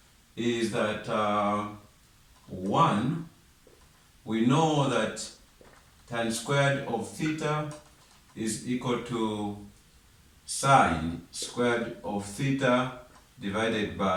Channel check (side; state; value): both; identical; correlation 1.00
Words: is that 1, we know that tan squared of theta is equal to sine squared of theta divided